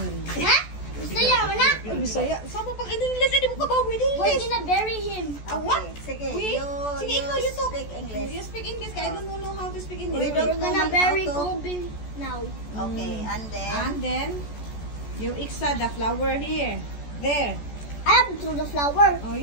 Ha? Bisaya mo na? Bisaya? Sama pag in-English, hindi mo ka ba with English? We're gonna bury him. What? Sige, Wait, sige, ikaw, you talk. speak English. You speak English, kaya I don't know how to speak English. We don't We're gonna know bury how to- Kobe now. Okay, and then... And then, you iksa the flower here. There. I have to throw the flower. Oh,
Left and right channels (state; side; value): late; right; 14 ms